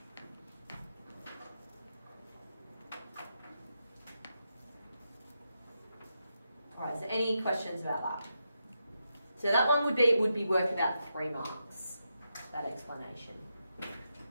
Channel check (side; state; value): both; inverted; correlation -0.85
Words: All right. So any questions about that? So that one would be worth about 3 marks. That explanation.